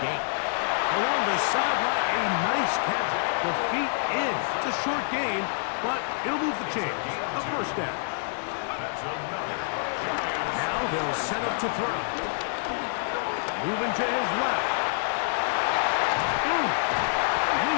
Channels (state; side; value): silent; right; digital silence